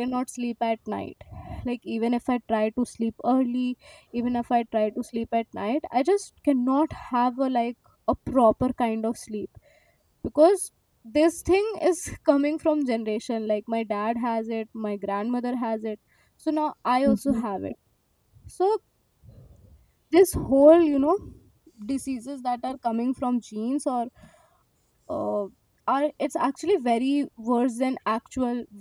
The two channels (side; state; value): both; identical; correlation 1.00